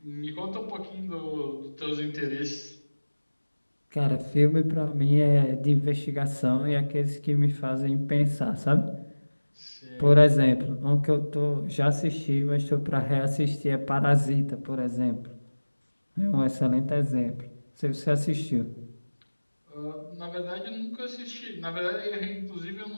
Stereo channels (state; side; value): inverted; both; correlation -1.00